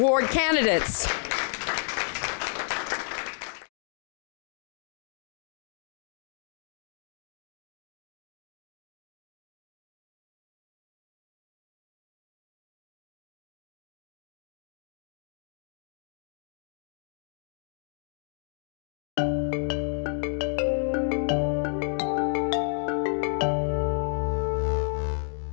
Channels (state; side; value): silent; right; digital silence